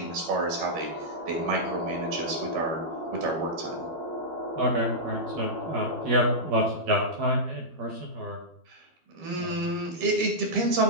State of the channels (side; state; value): left; late; 12 ms